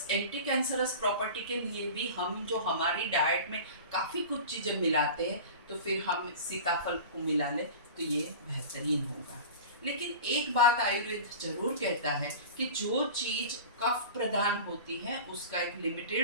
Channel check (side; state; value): both; inverted; correlation -0.34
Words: एंटी कैंसरस प्रॉपर्टी के लिए भी हम जो हमारी डाइट में काफ़ी कुछ चीज़ें मिलाते हैं, तो फिर हम सीताफल को मिला लें तो ये बेहतरीन होगा। लेकिन एक बात आयुर्वेद जरूर कहता है कि जो चीज़ कफ प्रदान होती है उसका एक